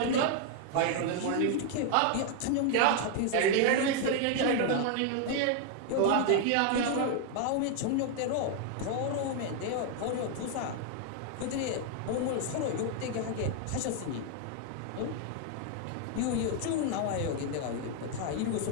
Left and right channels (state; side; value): different; both; correlation 0.00